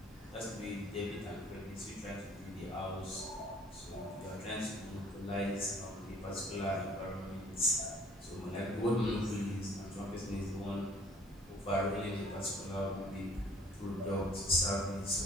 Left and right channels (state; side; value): normal; both; correlation 0.55